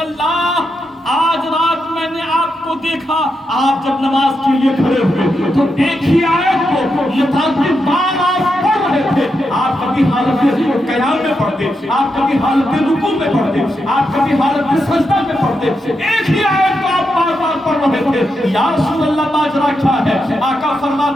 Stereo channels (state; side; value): normal; both; correlation 0.85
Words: آج رات میں نے آپ کو دیکھا آپ جب نماز کے لیے کھڑے ہوئے تو ایک ہی آیت کو متعدد بار آپ پڑھ رہے تھے. آپ کبھی حالت قیام میں پڑھتے, آپ کبھی حالت رکوع میں پڑھتے, آپ کبھی حالت سجدہ میں پڑھتے, ایک ہی آیت کو آپ بار بار پڑھ رہے تھے. یا رسول اللہ ماجرا کیا ہے؟ آقا